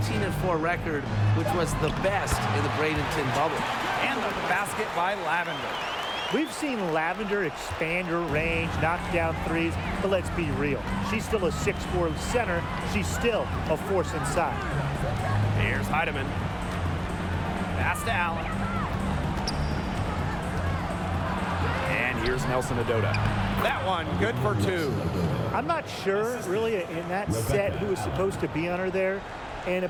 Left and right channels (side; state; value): both; identical; correlation 1.00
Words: record, which was the best in the Bradenton bubble. And the basket by Lavender. We've seen Lavender expand her range, knock down threes, but let's be real. She's still a 6'4" center. She's still a force inside. Here's Heidemann. Pass to Allen. And here's Nelson Adota. That one, good for 2. I'm not sure, really, in that set who was supposed to be on her there, and